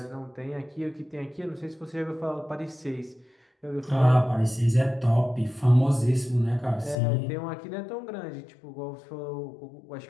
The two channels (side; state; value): right; drops out; at 7.0 s